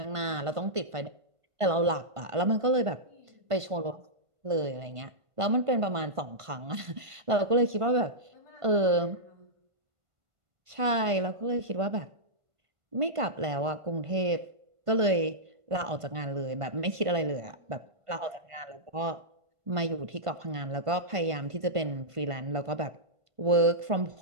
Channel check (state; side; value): late; left; 1.5 ms